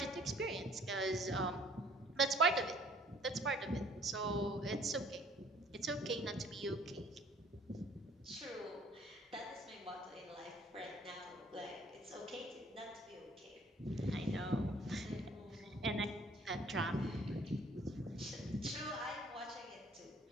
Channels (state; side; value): normal; both; correlation 0.57